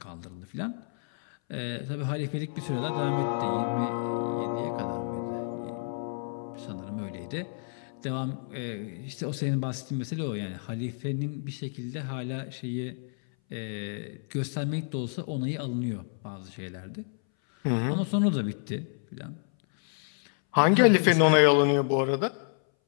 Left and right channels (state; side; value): silent; right; 58 dB below the other